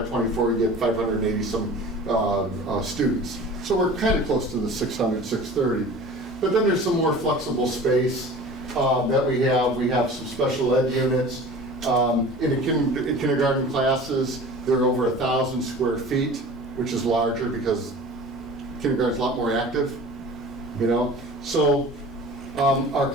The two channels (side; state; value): both; normal; correlation 0.40